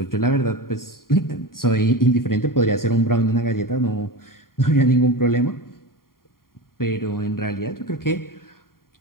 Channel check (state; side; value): late; right; 0.92 ms